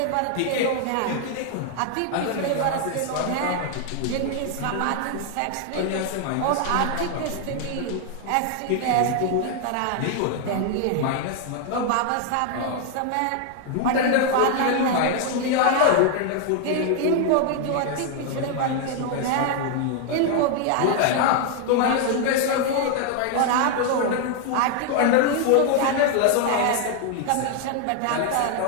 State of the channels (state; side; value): different; both; correlation 0.00